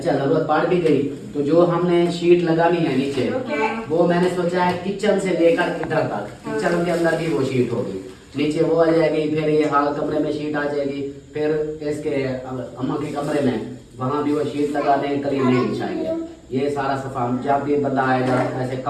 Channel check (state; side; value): identical; both; correlation 1.00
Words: जरूरत पड़ भी गई तो जो हमने शीट लगानी है नीचे वो मैंने सोचा है किचन से लेकर इधर तक, किचन के अंदर भी वो शीट होगी, नीचे वो आ जाएगी, फिर ये हाल कमरे में शीट आ जाएगी, फिर इसके अम्मा के कमरे में वहाँ भी वो शीट लगा देंगे, करीब नहीं बिछाएंगे। ये सारा सफा जब भी बंदा आएगा ऐसे